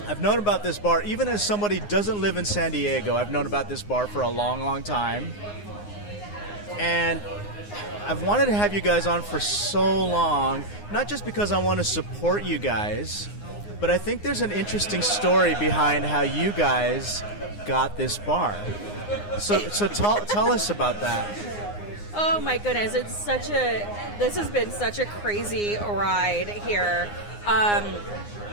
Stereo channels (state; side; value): late; right; 9.7 ms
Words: I've known about this bar, even as somebody who doesn't live in San Diego, I've known about this bar for a long, long time. And I've wanted to have you guys on for so long, not just because I want to support you guys, but I think there's an interesting story behind how you guys got this bar. So tell us about that. Oh my goodness, this has been such a crazy ride here.